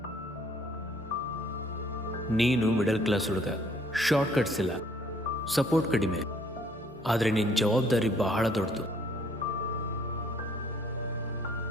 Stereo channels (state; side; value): normal; both; correlation 0.62